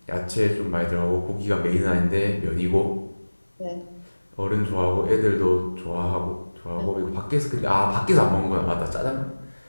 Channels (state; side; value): inverted; both; correlation -1.00